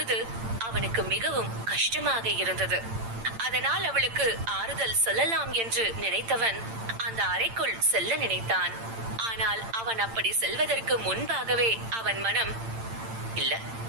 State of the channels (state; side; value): late; left; 8.8 ms